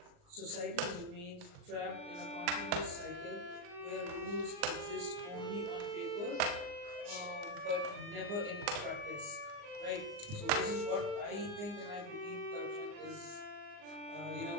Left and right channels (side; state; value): left; late; 39 ms